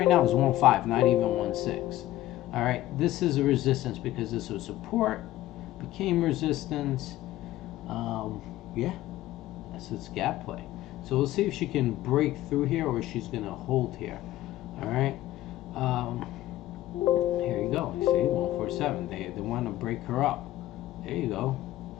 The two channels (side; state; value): right; quieter; 15.0 dB